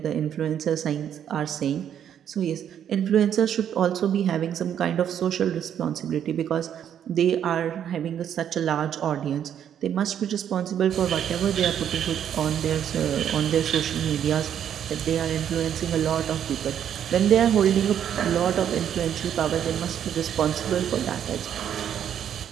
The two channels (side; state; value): left; quieter; 9.4 dB